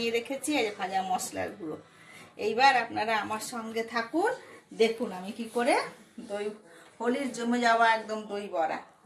রেখেছি, এই যে ভাজা মশলার গুঁড়ো। এইবার আপনারা আমার সঙ্গে থাকুন, দেখুন আমি কি করে দই হোলির জমে যাওয়া একদম দই বড়া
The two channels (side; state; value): both; identical; correlation 1.00